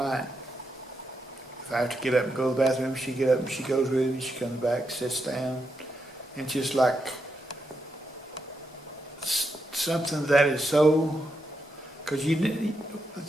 If I have to get up and go to the bathroom, she get up and she goes with me. She comes back, sits down, and just like something that is so, because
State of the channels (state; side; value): normal; both; correlation 0.83